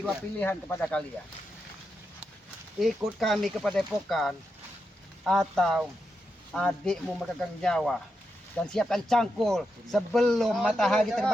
adiknya. pilihan kepada kalian. Ikut kami ke Padepokan atau adikmu memegang nyawa dan siapkan cangkul sebelum matahari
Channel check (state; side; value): normal; both; correlation 0.86